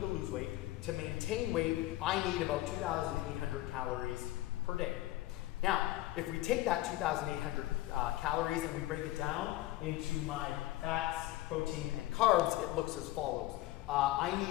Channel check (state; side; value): quieter; right; 16.4 dB